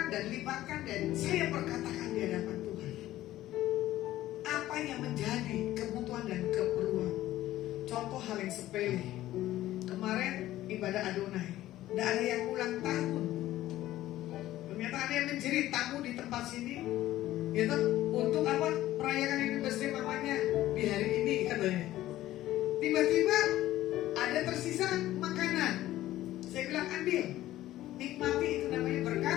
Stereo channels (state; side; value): quieter; right; 14.7 dB